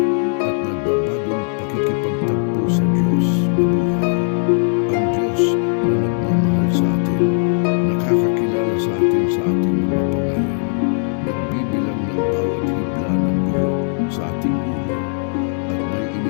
at nagbabagong pakikipagtagpo sa Diyos na buhay. Ang Diyos na nagmamahal sa atin, nakakakilala sa atin sa ating mga pangalan, nagbibilang ng bawat hibla ng buhok sa ating ulo, at may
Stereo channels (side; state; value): right; silent; 67 dB below the other